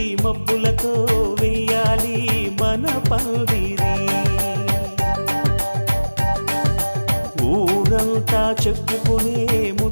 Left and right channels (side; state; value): both; inverted; correlation -1.00